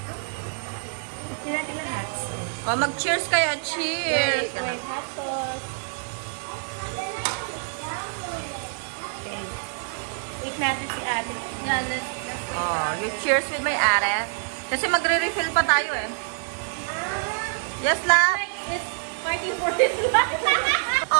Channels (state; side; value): silent; left; digital silence